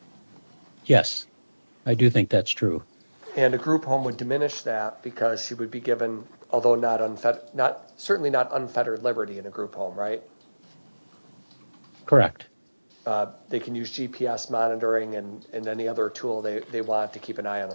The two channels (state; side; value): inverted; both; correlation -1.00